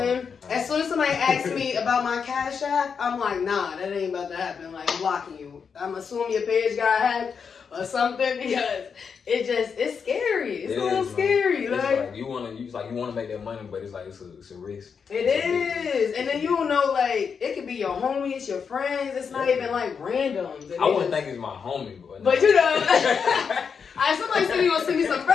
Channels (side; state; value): right; quieter; 6.2 dB